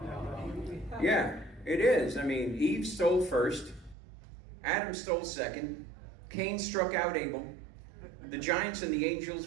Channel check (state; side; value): drops out; left; at 4.0 s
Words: Yeah, it is. I mean, Eve stole first. Adam stole second. Cain struck out Abel. The giants and the